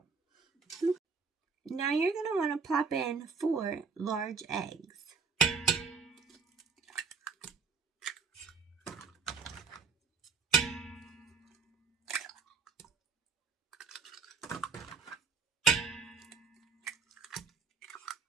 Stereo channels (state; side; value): quieter; left; 5.1 dB